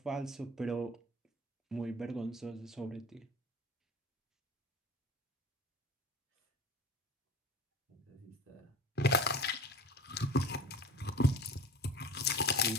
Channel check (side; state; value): both; normal; correlation 0.38